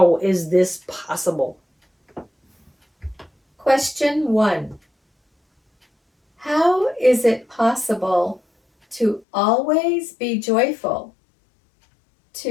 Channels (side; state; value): right; drops out; at 9.2 s